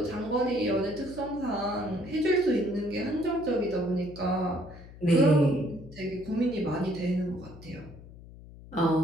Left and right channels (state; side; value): noise; left; hum, 18 dB below the sound